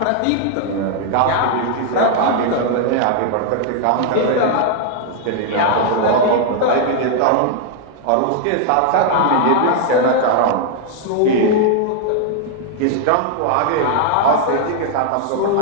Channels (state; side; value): different; both; correlation 0.00